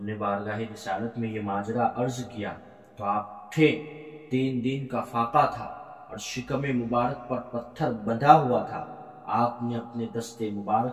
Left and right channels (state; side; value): identical; both; correlation 1.00